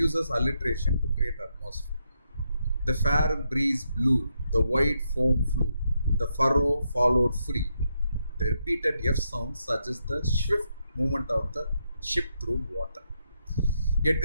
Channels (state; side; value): inverted; both; correlation -0.81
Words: alliteration to create atmosphere. The fair breeze blew, the white foam flew, the furrow followed free. The repeated F sound suggests the swift movement of the ship through water.